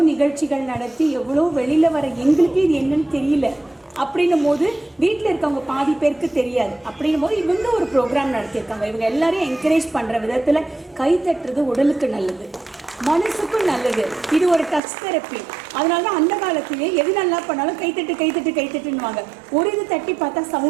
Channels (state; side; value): drops out; left; at 14.8 s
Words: நிகழ்ச்சிகள் நடத்தி எவ்வளோ வெளியில் வர எங்களுக்கு இது என்னன்னு தெரியல அப்படின்னும் போது வீட்டில் இருக்கவங்க பாதி பேருக்கு தெரியாது. அப்படின்னும் போது இவங்க ஒரு ப்ரோக்ராம் நடத்தியிருக்காங்க. இவங்க எல்லாரையும் என்கரேஜ் பண்ணுற விதத்தில் கை தட்டுறது உடலுக்கு நல்லது, மனசுக்கும் நல்லது. இது ஒரு டச் தெரப்பி. அதனால தான் அந்த காலத்திலே எது நல்லா பண்ணாலும் கைத்தட்டுன்னுவாங்க. ஒரு இது தட்டி பார்த்தா